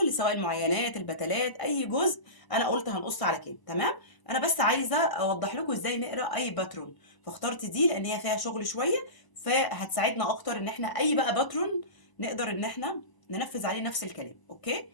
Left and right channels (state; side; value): late; right; 1.0 ms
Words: سواء المعينات البتلات اي جزء انا قلت هنقص على كام. تمام؟ انا بس عايزه اوضح لكم ازاي نقرا اي باترون، فاخترت دي لان هي فيها شغل شويه، فهتساعدنا اكتر ان احنا اي بقى باترون نقدر ان احنا ننفذ عليه نفس الكلام. اوكي،